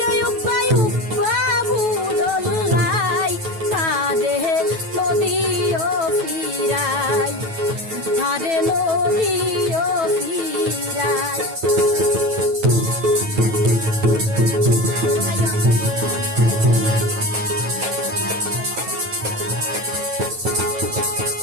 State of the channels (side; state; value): left; late; 9.2 ms